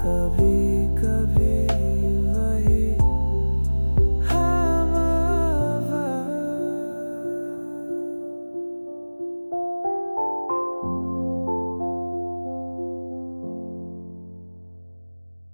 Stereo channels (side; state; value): both; inverted; correlation -1.00